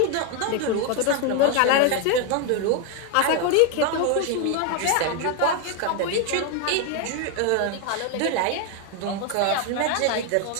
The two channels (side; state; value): both; different; correlation 0.01